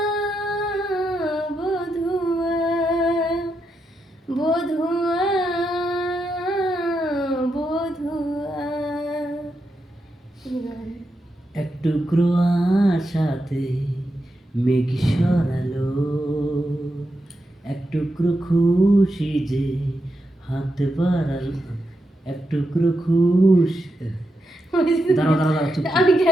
বধুয়া বধুয়া বধুয়া। এক টুকরো আশাতে মেঘ সরালো, এক টুকরো খুশি যে হাত বাড়ালো, এক টুকরো খুশি দাঁড়াও দাঁড়াও দাঁড়াও, চুপ আমি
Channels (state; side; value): normal; both; correlation 0.85